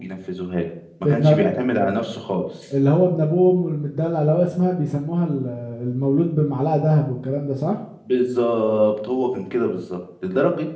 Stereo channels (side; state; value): both; identical; correlation 1.00